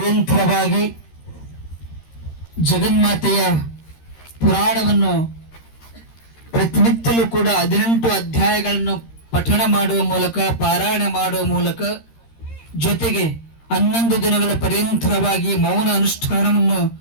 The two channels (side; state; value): right; late; 13 ms